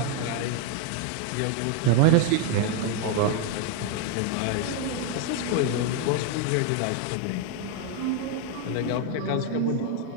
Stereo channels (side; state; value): both; different; correlation 0.01